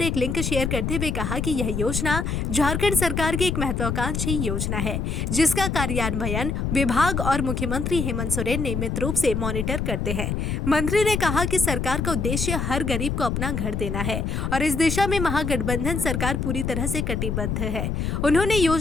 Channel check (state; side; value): noise; left; rumble, 1 dB below the sound